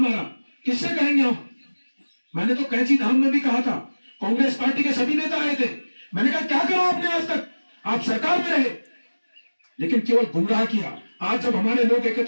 किससे कहेंगे हम? मैंने तो कैंची धाम में भी कहा था, कांग्रेस पार्टी के सभी नेता आए थे, मैंने कहा क्या करा आपने आज तक, आप सरकार में रहे लेकिन केवल गुमराह किया। आज जब हमारे लोग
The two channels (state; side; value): inverted; both; correlation -1.00